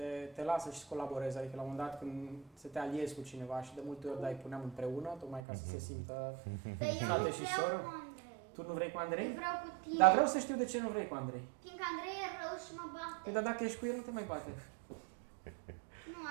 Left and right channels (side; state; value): left; drops out; at 5.4 s